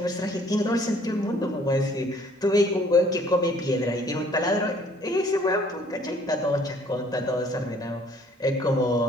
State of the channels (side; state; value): both; normal; correlation 0.58